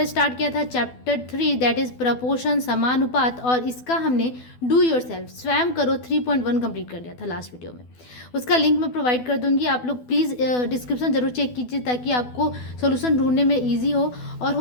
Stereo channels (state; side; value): late; right; 12 ms